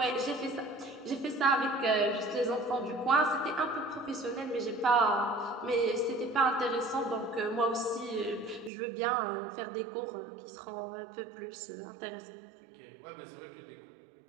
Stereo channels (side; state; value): left; drops out; at 8.7 s